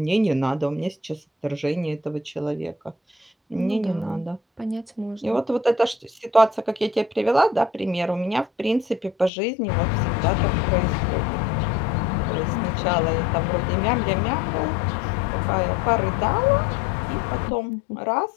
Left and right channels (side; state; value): right; drops out; at 9.3 s